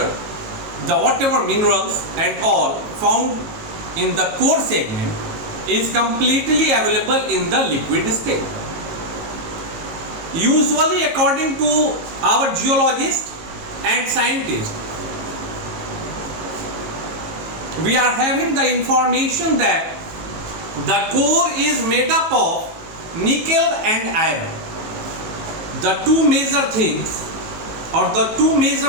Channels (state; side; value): late; left; 18 ms